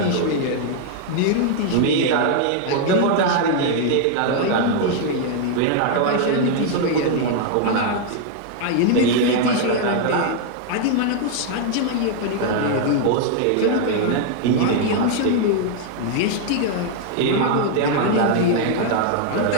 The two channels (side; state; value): both; different; correlation 0.00